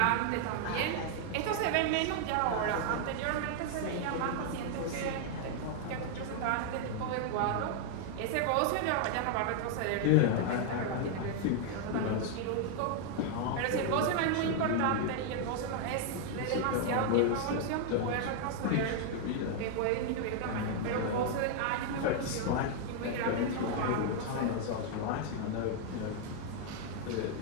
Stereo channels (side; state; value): both; different; correlation 0.00